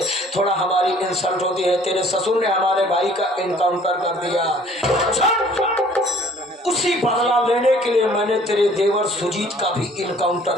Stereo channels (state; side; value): normal; both; correlation 0.55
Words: थोड़ा हमारी इंसल्ट होती है। तेरे ससुर ने हमारे भाई का इनकाउंटर कर दिया। उसी बदला लेने के लिए मैंने तेरे देवर सुजीत का भी